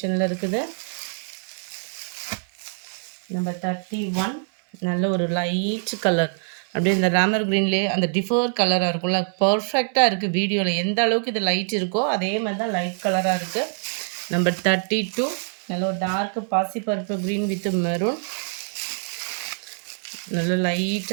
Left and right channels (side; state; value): left; silent; 62 dB below the other